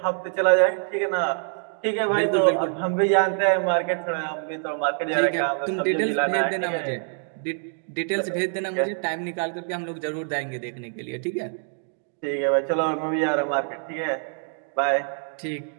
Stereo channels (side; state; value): left; silent; 62 dB below the other